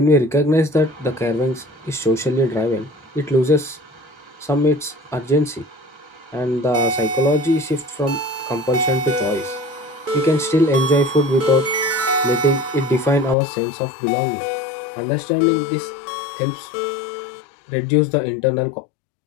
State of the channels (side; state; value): right; drops out; at 13.4 s